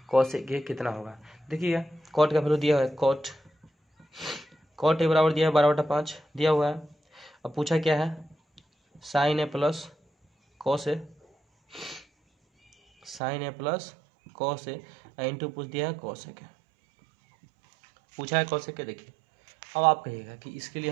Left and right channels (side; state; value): left; drops out; at 13.2 s